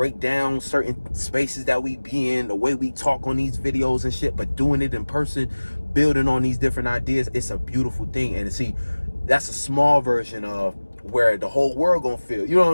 down certain spaces that we be in, the way we talk on these videos and shit, but doing it in person, building on these different ideas, it's a beautiful thing. And see, that's a small version of where the whole world gonna feel, you know what I'm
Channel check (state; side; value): inverted; both; correlation -1.00